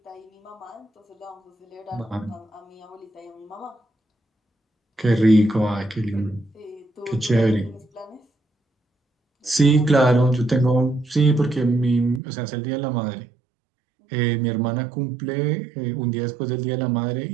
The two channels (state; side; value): drops out; left; at 12.2 s